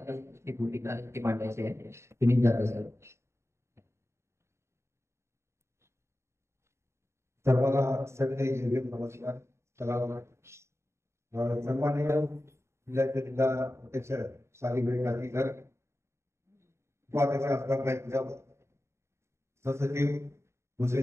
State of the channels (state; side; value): late; left; 0.13 ms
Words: भूमिका ती मांडायची आहे. सुनील जाधव सर. सर्वांना सगळे नमस्कार. सन्माननीय जिल्हा अध्यक्ष सालिग्राम गांधीकर, उपाध्यक्ष असणार सचिव